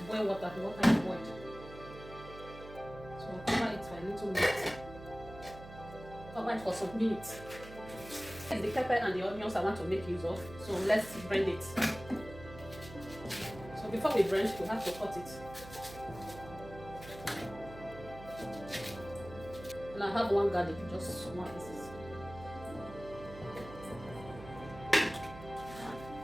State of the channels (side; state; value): right; noise; hum, 15 dB below the sound